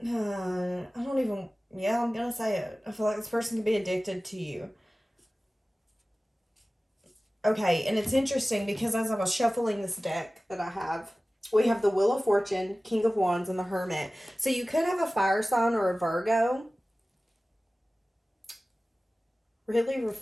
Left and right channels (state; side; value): normal; both; correlation 0.97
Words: I don't even, yeah, I'm going to say it. I feel like this person could be addicted to you. Okay, and it's interesting because as I was shuffling this deck that I have, we have the Wheel of Fortune, King of Wands, and the Hermit. So you could have a fire sign or a Virgo really